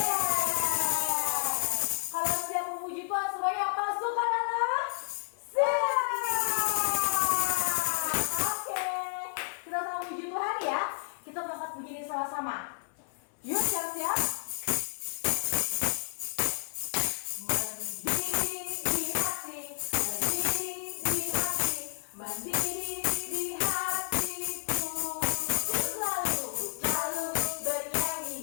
Kalau siap memuji Tuhan semuanya pasukan Allah siap. Oke, kita sama memuji Tuhan ya. Kita angkat puji ini sama-sama. Yuk siap-siap. Mendiri di hati, mendiri di hati, mendiri di hatiku. Ku selalu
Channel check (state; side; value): silent; right; 57 dB below the other